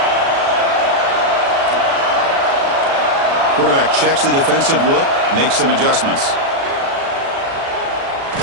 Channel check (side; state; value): left; late; 36 ms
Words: Quarterback checks the defensive look, makes some adjustments.